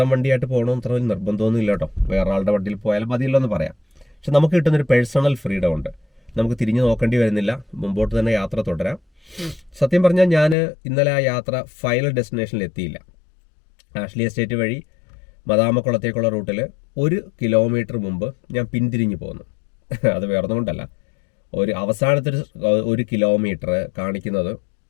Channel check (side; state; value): right; drops out; at 10.6 s